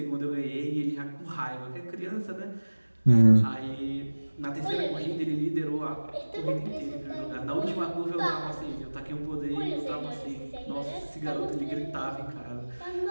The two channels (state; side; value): inverted; both; correlation -1.00